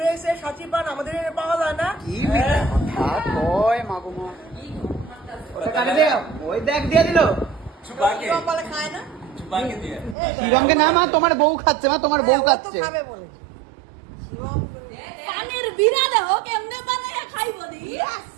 সাচি পান আমাদের এখানে পাওয়া যায় না। কি মিথ্যা কথা কয় মাগুমা। ওই দেখ দিয়ে দিল খায় না শিবমকে না, মা তোমার বউ খাচ্ছে, মা তোমার বউ খাচ্ছে। পানের বিনা দেখো কেমনে বানায় খাইবো দি।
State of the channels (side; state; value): left; drops out; at 10.2 s